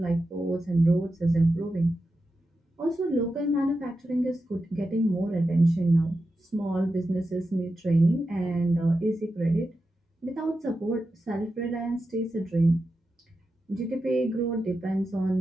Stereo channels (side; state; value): both; normal; correlation 0.90